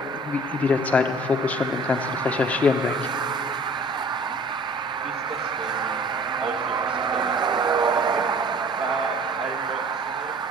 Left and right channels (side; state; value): both; normal; correlation 0.49